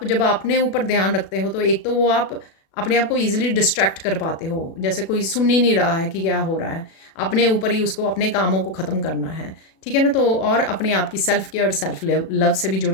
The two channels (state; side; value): late; right; 36 ms